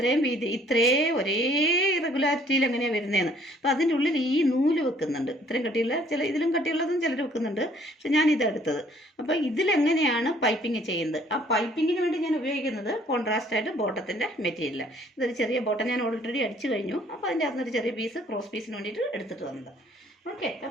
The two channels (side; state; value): both; normal; correlation 0.60